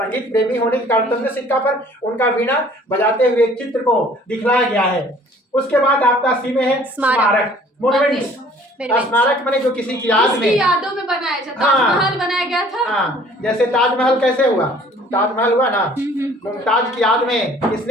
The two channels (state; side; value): normal; both; correlation 0.54